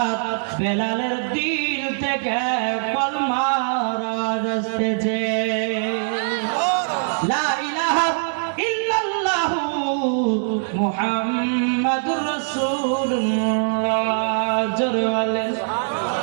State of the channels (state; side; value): silent; left; digital silence